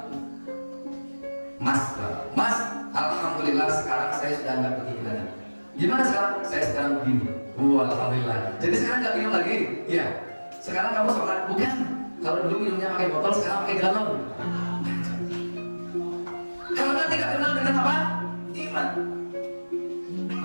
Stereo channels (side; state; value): both; inverted; correlation -1.00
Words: Mas, alhamdulillah sekarang saya sudah nggak begini lagi. Gimana sekarang? Saya sekarang begini. Alhamdulillah. Jadi sekarang nggak minum lagi? Iya. Sekarang kamu sholat? Bukan. Kalau dulu minumnya pakai botol, sekarang pakai galon. Karena tidak kenal dengan apa? Iman.